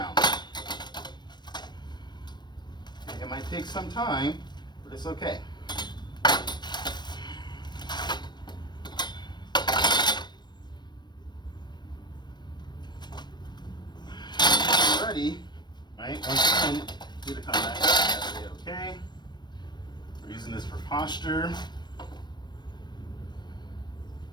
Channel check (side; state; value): right; late; 0.21 ms